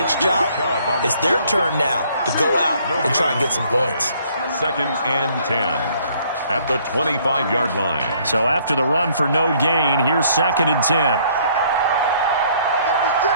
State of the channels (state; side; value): inverted; both; correlation -0.62